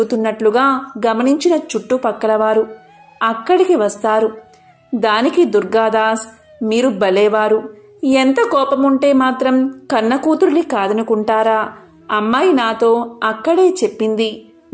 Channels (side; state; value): both; identical; correlation 1.00